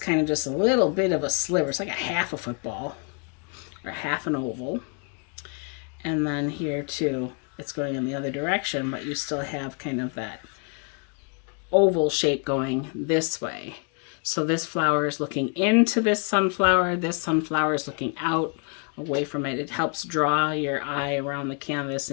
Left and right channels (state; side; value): quieter; right; 39.0 dB